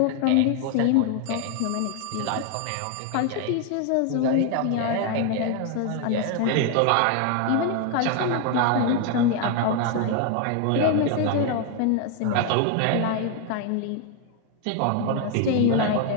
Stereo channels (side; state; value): both; different; correlation 0.00